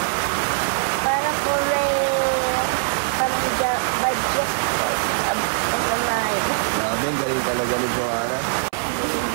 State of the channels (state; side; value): silent; left; 60 dB below the other